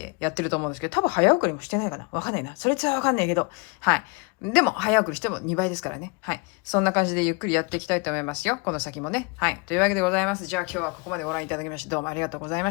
やってると思うんですけど、多分早送りもしてないかな。わかんないな。それはわかんないけど。はい。でも、早送りしても2倍ですからね。はい。そんな感じでゆっくりやっていきたいと思いますよ。この先もね。はい。というわけでございます。じゃあ今日はここまでご覧いただきまして、どうもありがとうございま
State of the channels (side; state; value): right; quieter; 30.4 dB